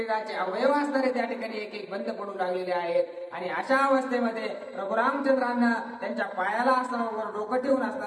अवयव असणारे त्या ठिकाणी एक एक बंद पडू लागलेले आहेत. आणि अशा अवस्थेमध्ये प्रभू रामचंद्रांना त्यांच्या पायाला असणारं डोकं ठेवून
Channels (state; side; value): identical; both; correlation 1.00